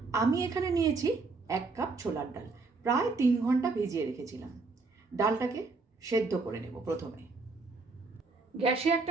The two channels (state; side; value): quieter; left; 3.9 dB